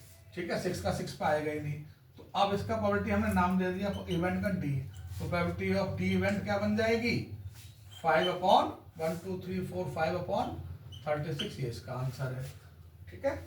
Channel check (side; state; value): both; identical; correlation 1.00